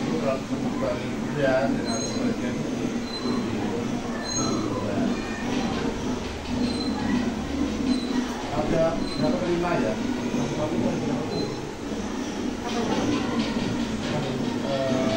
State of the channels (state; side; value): identical; both; correlation 1.00